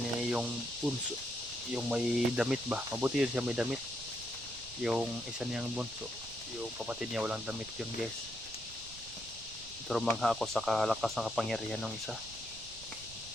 yung bunso, yung may damit ba? Mabuti yun siya may damit. Yung isa niyang bunso, yung kapatid niya walang damit yun guys. Pero mangha ako sa kalakas ng kapangyarihan ng isa.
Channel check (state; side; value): noise; right; rumble, 18 dB below the sound